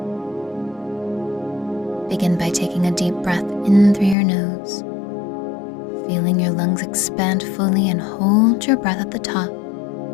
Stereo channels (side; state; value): right; drops out; at 4.2 s